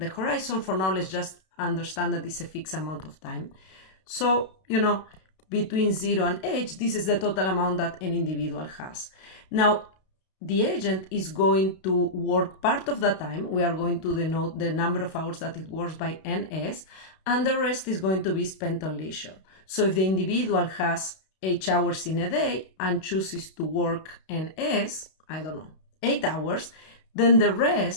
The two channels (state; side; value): late; right; 32 ms